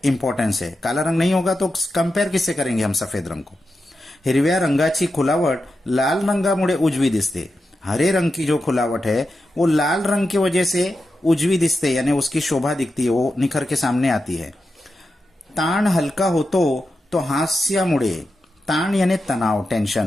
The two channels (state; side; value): normal; both; correlation 0.89